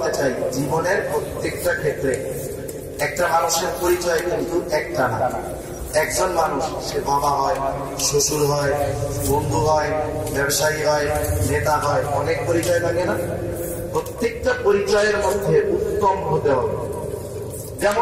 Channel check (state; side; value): identical; both; correlation 1.00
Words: চাই, জীবনের প্রত্যেকটা ক্ষেত্রে একটা মানুষের পরিচয় কিন্তু একটা না। একজন মানুষ, সে বাবা হয়, শ্বশুর হয়, বন্ধু হয়, ব্যবসায়ী হয়, নেতা হয়, অনেক পরিচয় থাকে না? প্রত্যেকটা পরিচয়ের মধ্যে উত্তম হতে হবে।